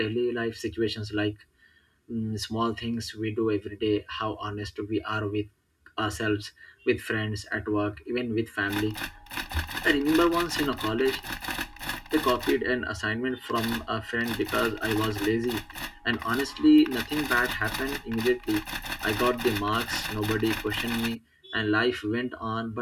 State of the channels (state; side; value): identical; both; correlation 1.00